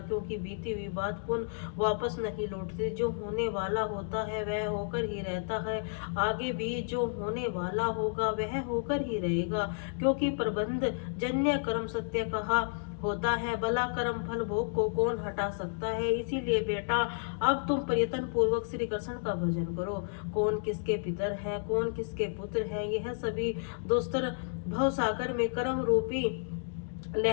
क्योंकि बीती हुई बात पुनः वापस नहीं लौटती। जो होने वाला होता है वह होकर ही रहता है। आगे भी जो होने वाला होगा वह होकर ही रहेगा, क्योंकि प्रबंध जन्य कर्म सत्य कहा होता है। भला कर्म फल भोग को कौन हटा सकता है? इसीलिए बेटा, अब तुम प्रयत्न पूर्वक श्री कृष्ण का भजन करो। कौन किसके पितर है, कौन किसके पुत्र है, यह सभी दोस्तर भवसागर में कर्म रूपी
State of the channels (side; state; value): right; silent; digital silence